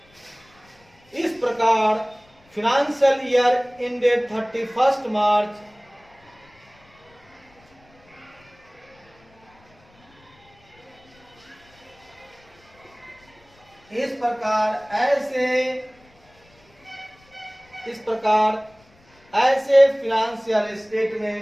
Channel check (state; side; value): noise; left; rumble, 30 dB below the sound